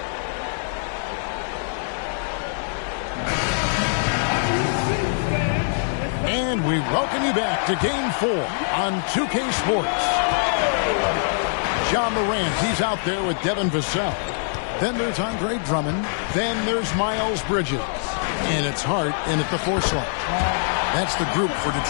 And we welcome you back to Game 4 on 2K Sports. Ja Morant, he's out there with Devin Vassell. Then there's Andre Drummond. Then there's Miles Bridges. And it's Hart in at the 4 slot. That's the group for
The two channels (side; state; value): right; silent; 63 dB below the other